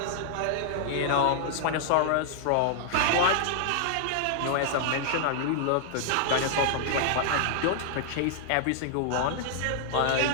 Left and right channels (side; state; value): both; different; correlation -0.01